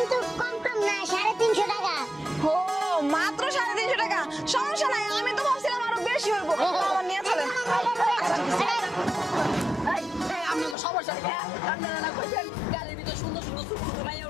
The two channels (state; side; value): drops out; right; at 10.8 s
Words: কম না 350 টাকা ও মাত্র 350 টাকা সমস্যা নাই আমি তো ভাবছিলাম আরো বেশি হইব আমার নিয়ে চলেন আপনার তো সমস্যা নেই আপনারা না কইছেন গাড়ির ভিতর সুন্দর সুন্দর ছোট ছোট মাইয়া